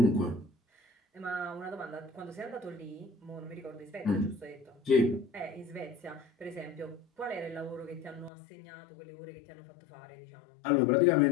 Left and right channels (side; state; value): right; drops out; at 8.3 s